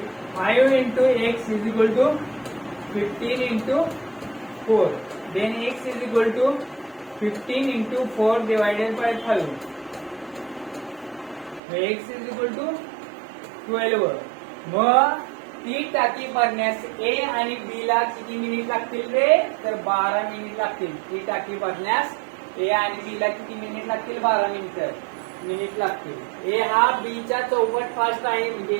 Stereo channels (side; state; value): left; drops out; at 11.6 s